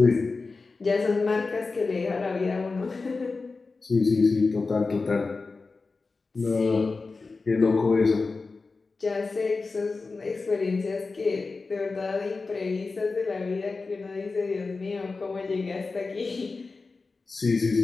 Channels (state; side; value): quieter; right; 4.0 dB